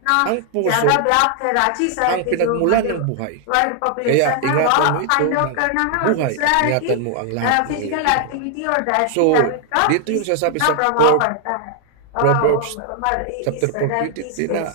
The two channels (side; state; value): both; different; correlation 0.00